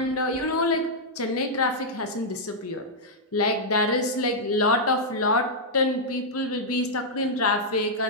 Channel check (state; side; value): normal; both; correlation -0.06